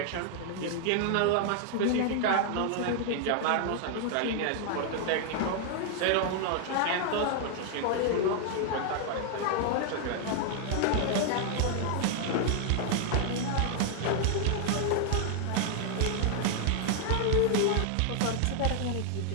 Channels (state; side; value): different; both; correlation 0.00